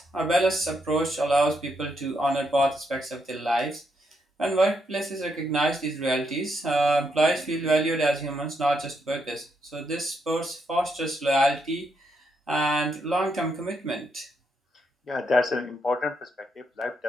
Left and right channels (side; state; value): both; normal; correlation 0.78